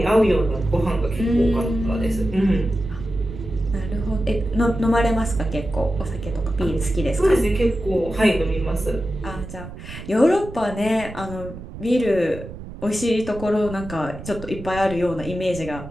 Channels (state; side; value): noise; right; rumble, 13 dB below the sound